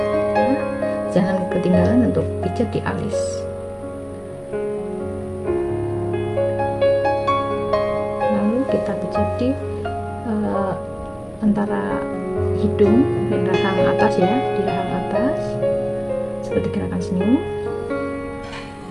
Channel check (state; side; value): identical; both; correlation 1.00